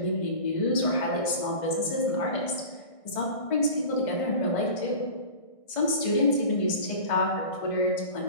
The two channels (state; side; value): late; right; 1.6 ms